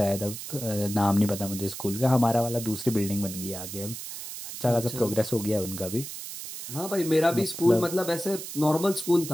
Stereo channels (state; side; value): noise; right; hiss, 9 dB below the sound